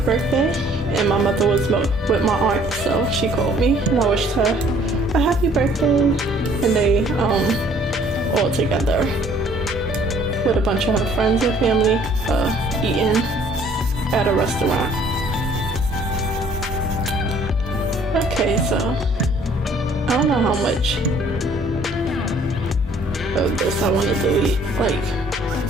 birthday, and my mother was with my aunt, so she called me, and I wished her a happy birthday. And they all together with a bunch of her friends and family eating at a restaurant. Okay, so I don't know how much of this I want to delete. Like,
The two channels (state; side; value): normal; both; correlation 0.58